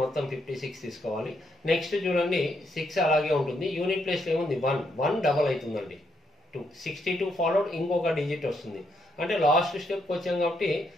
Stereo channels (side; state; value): both; normal; correlation 0.77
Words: మొత్తం 56 తీసుకోవాలి. నెక్స్ట్ చూడండి 6 అలాగే ఉంటుంది. యూనిట్ ప్లేస్లో ఏముంది 1 డబల్ అవుతుందండి. 62 ఫాలోడ్ ఇంకొక డిజిట్ వస్తుంది. అంటే లాస్ట్ స్టెప్కి వచ్చాం కాబట్టి